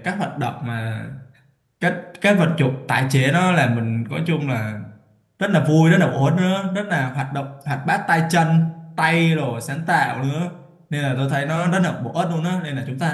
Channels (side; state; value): both; identical; correlation 1.00